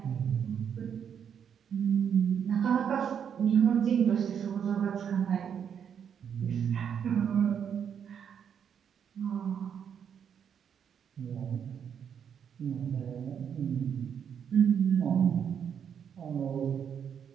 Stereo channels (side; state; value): left; quieter; 8.0 dB